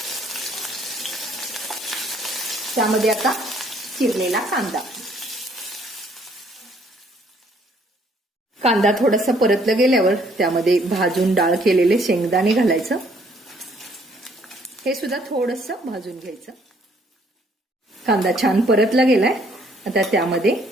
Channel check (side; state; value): both; normal; correlation 0.64